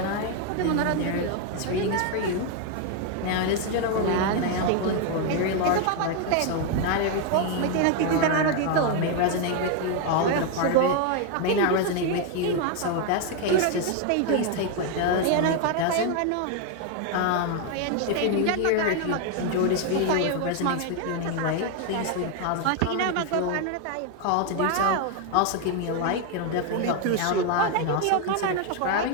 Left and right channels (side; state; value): both; different; correlation 0.01